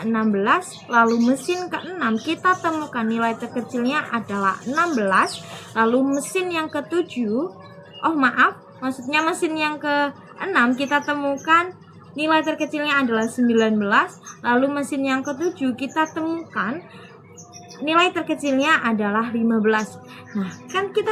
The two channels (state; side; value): identical; both; correlation 1.00